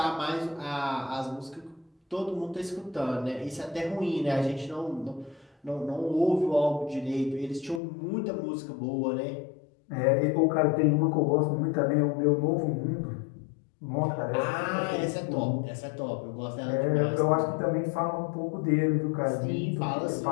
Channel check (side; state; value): right; drops out; at 7.8 s